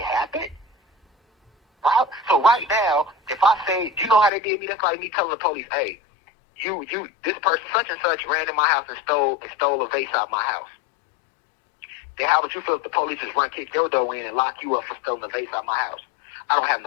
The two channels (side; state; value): right; drops out; at 4.3 s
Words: happened? Right? So right now, if I say, you know how they did me? That's like me telling the police, hey, this person such and such ran in my house and stole a vase out of my house. Then how would you feel if the police just kick your door in and lock you up for stealing a vase out of my house? I don't have